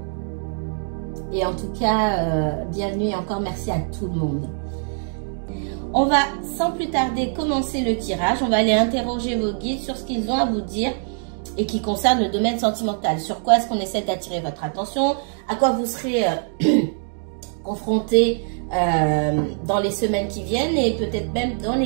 Et en tout cas, bienvenue et encore merci à tout le monde. On va sans plus tarder commencer le tirage. On va aller interroger vos guides sur ce qu'ils ont à vous dire et qui concerne le domaine sentimental. Sur quoi est-ce qu'on essaie d'attirer votre attention? À quoi vous serez confronté dans les semaines qui viennent et peut-être même dans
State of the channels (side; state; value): left; silent; 64 dB below the other